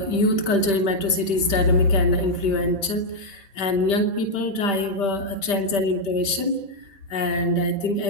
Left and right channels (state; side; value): late; right; 5.1 ms